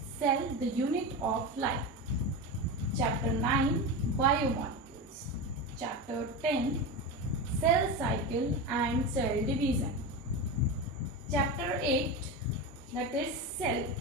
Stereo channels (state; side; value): normal; both; correlation 0.21